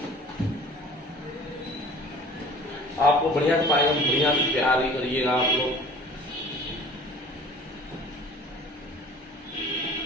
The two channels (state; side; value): normal; both; correlation 0.46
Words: आपको बढ़िया से पाएंगे, बढ़िया से प्यार ही करिएगा आप लोग।